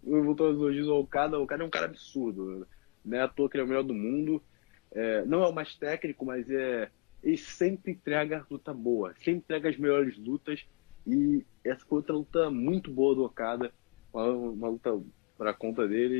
eu vou trazer os elogios ao Okada. O Okada é um cara absurdo. Não é à toa que ele é o melhor do mundo. Não é o mais técnico, mas ele sempre entrega luta boa. Sempre entrega as melhores lutas. E essa foi outra luta muito boa do Okada. Uma luta para conta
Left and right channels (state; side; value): quieter; right; 39.6 dB